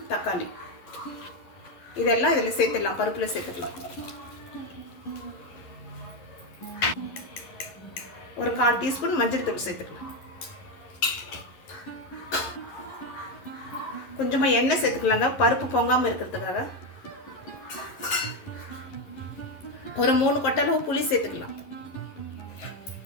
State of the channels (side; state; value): right; late; 11 ms